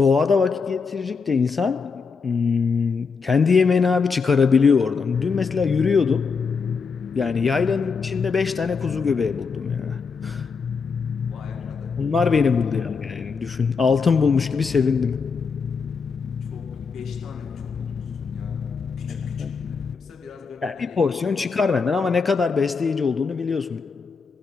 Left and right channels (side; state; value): right; quieter; 5.2 dB